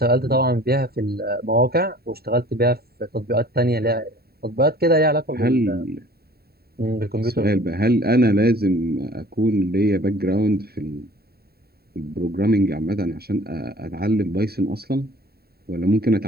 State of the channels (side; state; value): left; late; 0.45 ms